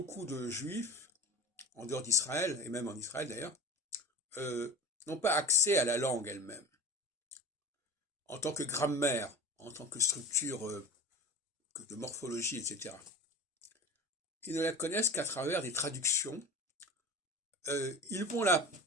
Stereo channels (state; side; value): normal; both; correlation 0.33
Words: de juifs, en dehors d'Israël, et même en Israël d'ailleurs, n'ont pas accès à la langue elle-même, en tant que grammaire, en tant que structure de morphologie, etc. Ils ne la connaissent qu'à travers des traductions. Ils vont la